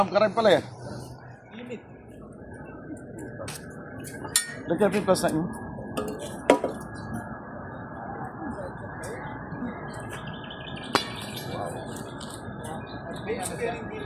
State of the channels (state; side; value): identical; both; correlation 1.00